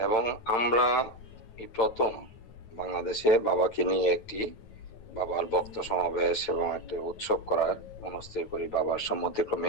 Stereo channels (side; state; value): right; late; 9.3 ms